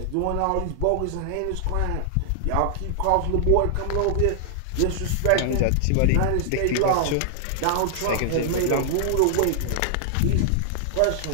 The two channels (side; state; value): both; different; correlation -0.01